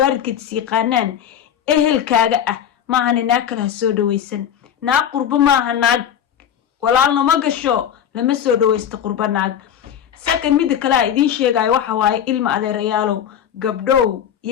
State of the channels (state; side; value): quieter; right; 9.3 dB